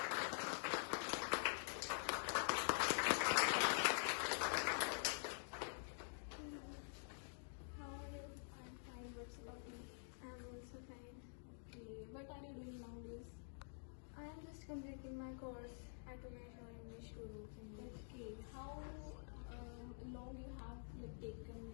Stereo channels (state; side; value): silent; right; digital silence